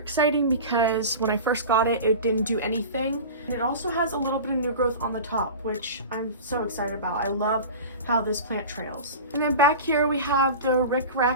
because when I first got it, it didn't do anything. And it also has a little bit of new growth on the top, which I'm so excited about. I love how this plant trails. And then back here we have the Rick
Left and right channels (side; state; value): both; inverted; correlation -0.32